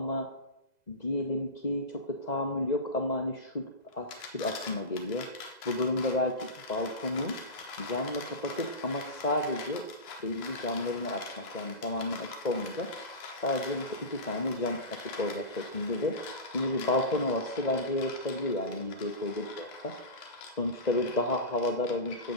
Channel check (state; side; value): late; right; 2.0 ms